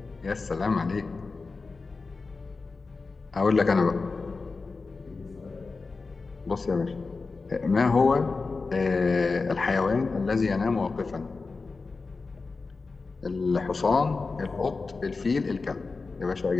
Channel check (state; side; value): quieter; right; 4.1 dB